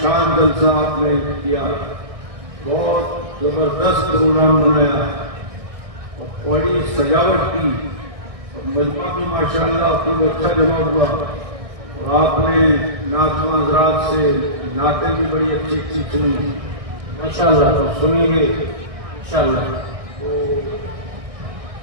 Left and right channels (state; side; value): late; left; 1.6 ms